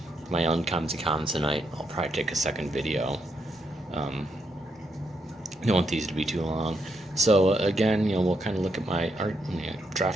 my uncommons and commons tonight. I'll probably take a second video. I don't want these to be too long. So again, we'll kind of look at my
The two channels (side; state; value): both; normal; correlation 0.79